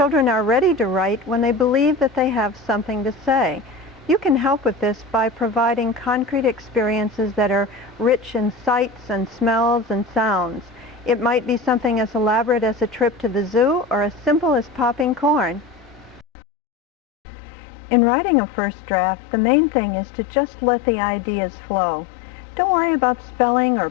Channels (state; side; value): drops out; right; at 16.2 s